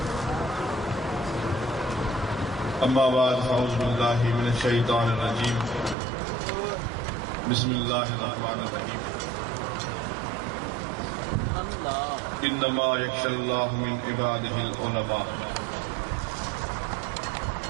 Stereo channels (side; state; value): left; drops out; at 6.0 s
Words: अम्मा बाद अऊज़ु बिल्लाहि मिनश शैतानिर रजीम। बिस्मिल्लाहिर रहमानिर रहीम। इन्नमा यख्शल्लाहु मिन इबादिहिल उलमा।